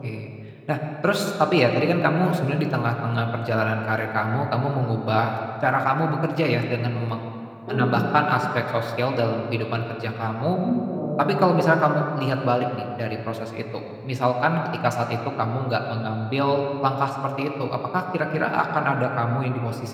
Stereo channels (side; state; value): both; identical; correlation 1.00